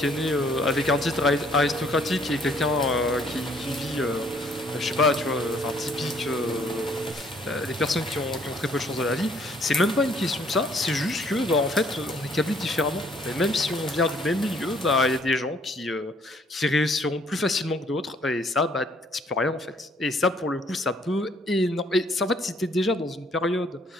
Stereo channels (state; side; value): normal; both; correlation 0.63